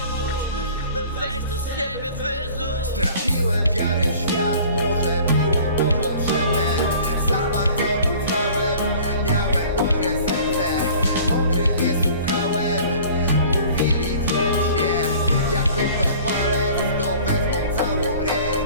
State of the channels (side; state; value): both; inverted; correlation -0.47